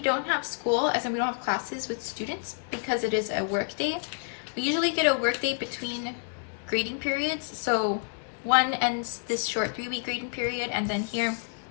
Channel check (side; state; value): right; silent; digital silence